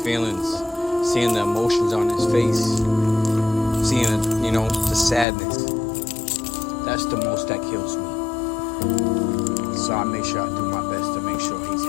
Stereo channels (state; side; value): drops out; right; at 5.2 s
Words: seeing the emotions on his face, seeing, the sadness. That's the most that kills me. So I make sure I do my best to make sure he's